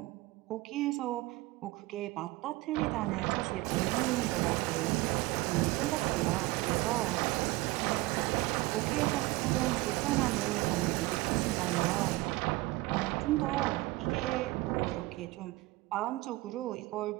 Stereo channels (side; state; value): left; quieter; 20.4 dB